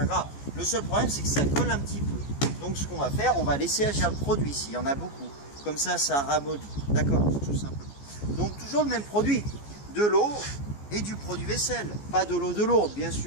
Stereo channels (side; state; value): right; late; 14 ms